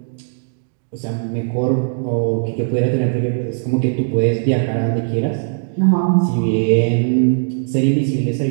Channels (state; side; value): silent; left; digital silence